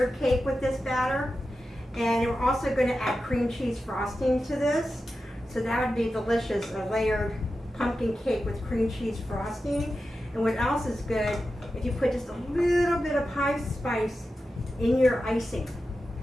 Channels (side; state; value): both; normal; correlation 0.91